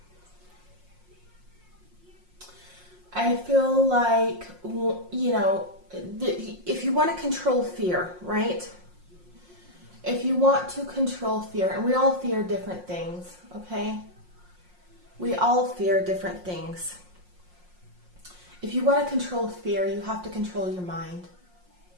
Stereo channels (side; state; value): left; late; 5.6 ms